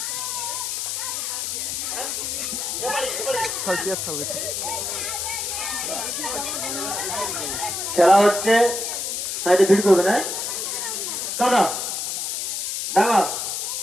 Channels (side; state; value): left; noise; hiss, 2 dB below the sound